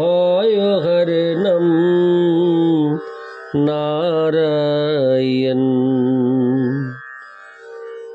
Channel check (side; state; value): both; identical; correlation 1.00